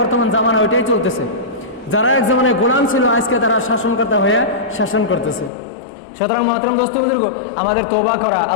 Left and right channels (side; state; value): right; drops out; at 5.5 s